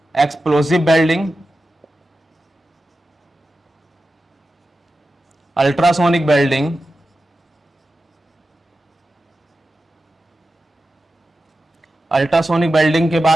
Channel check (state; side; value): normal; both; correlation 0.92